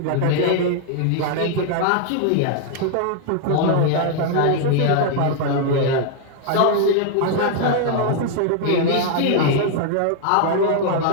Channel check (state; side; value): different; both; correlation 0.00